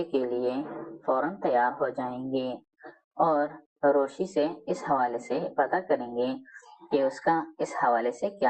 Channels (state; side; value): identical; both; correlation 1.00